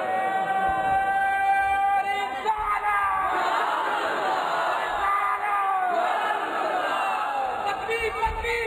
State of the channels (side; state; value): both; identical; correlation 1.00